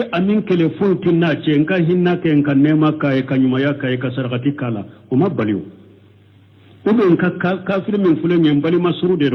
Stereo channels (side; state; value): both; identical; correlation 1.00